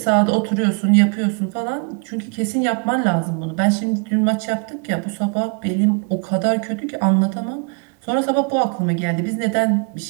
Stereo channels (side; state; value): left; quieter; 36.7 dB